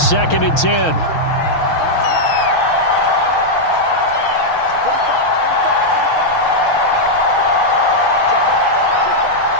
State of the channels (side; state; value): right; late; 6.2 ms